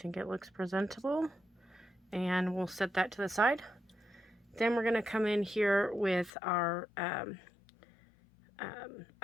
it looks presentable. And we'll set that to the side. Then we're going to come in here with our eye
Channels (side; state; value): right; drops out; at 6.3 s